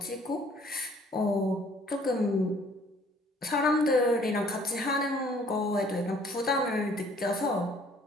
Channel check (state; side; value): normal; both; correlation 0.58